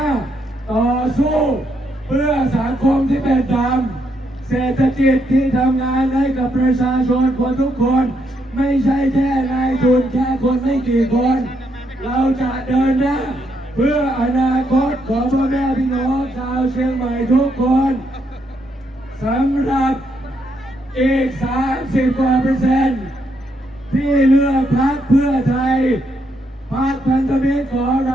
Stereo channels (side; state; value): both; normal; correlation 0.77